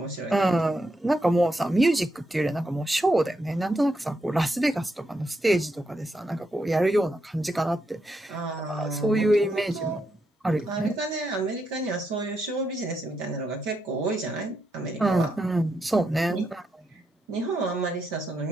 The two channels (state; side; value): normal; both; correlation 0.81